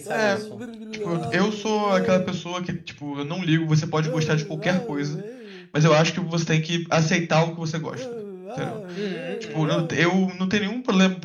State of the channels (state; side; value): identical; both; correlation 1.00